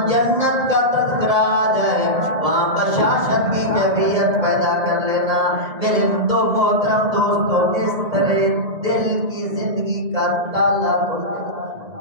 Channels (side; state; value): left; late; 2.0 ms